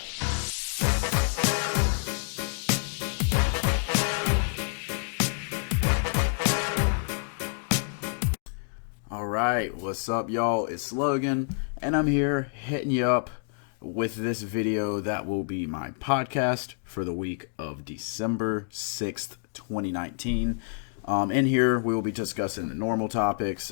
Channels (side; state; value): right; silent; 59 dB below the other